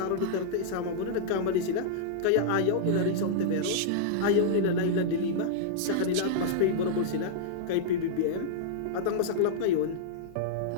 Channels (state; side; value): different; both; correlation -0.02